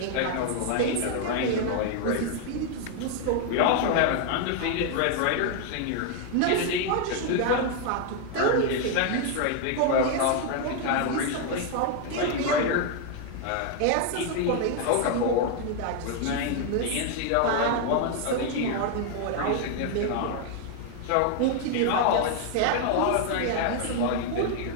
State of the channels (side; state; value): both; different; correlation 0.00